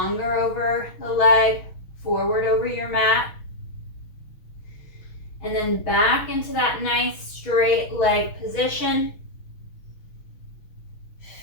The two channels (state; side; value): late; right; 6.3 ms